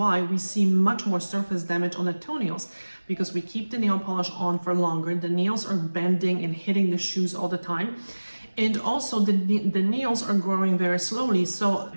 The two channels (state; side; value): inverted; both; correlation -1.00